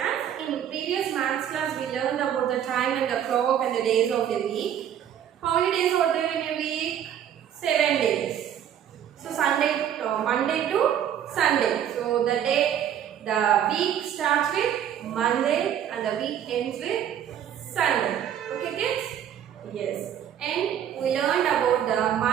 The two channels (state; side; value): quieter; left; 9.8 dB